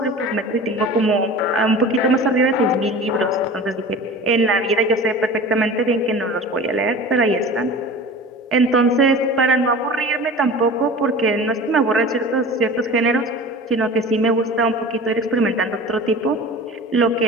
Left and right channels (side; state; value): both; normal; correlation 0.37